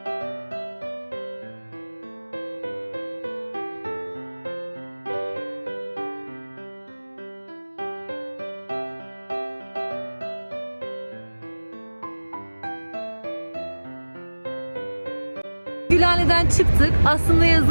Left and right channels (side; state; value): both; inverted; correlation -1.00